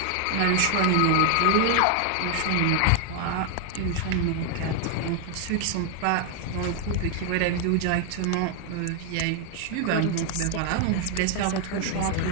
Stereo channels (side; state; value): both; different; correlation 0.00